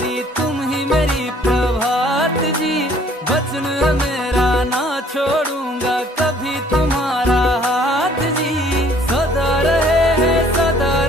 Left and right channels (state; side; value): normal; both; correlation 0.58